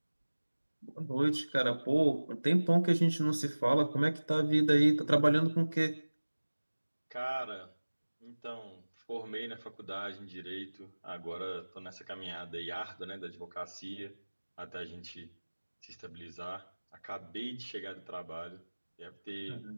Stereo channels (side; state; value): both; inverted; correlation -1.00